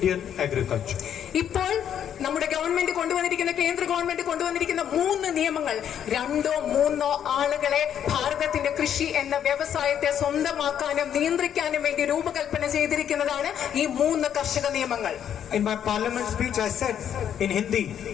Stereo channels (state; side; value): quieter; right; 9.3 dB